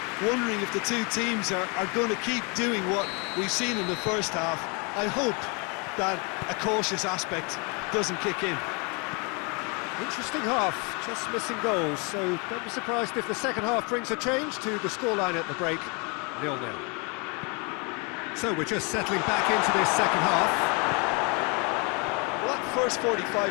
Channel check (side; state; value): right; quieter; 32.6 dB